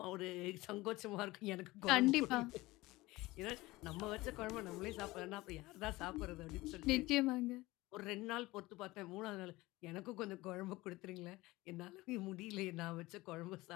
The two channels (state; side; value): quieter; right; 20.1 dB